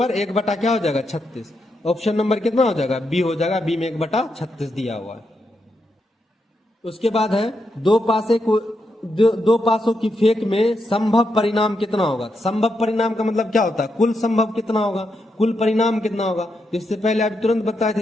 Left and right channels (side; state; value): both; normal; correlation 0.83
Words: 1 बटा क्या हो जाएगा 36, ऑप्शन नंबर कितना हो जाएगा बी हो जाएगा, बी में 1 बटा 36 दिया हुआ है। उसके बाद है दो पासों की फेंक में संभव परिणाम कितना होगा। संभव परिणाम का मतलब क्या होता है, कुल संभव कितना होगा, कुल परिणाम कितना होगा। इससे पहले अभी तुरंत बताए